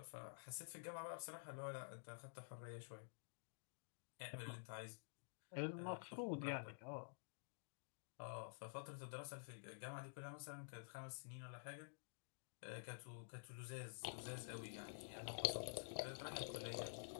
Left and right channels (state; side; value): silent; right; digital silence